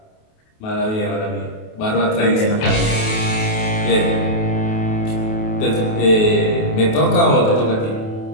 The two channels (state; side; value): late; right; 28 ms